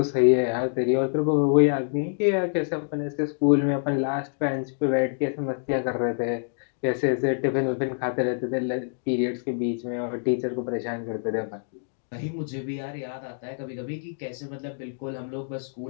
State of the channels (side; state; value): right; silent; digital silence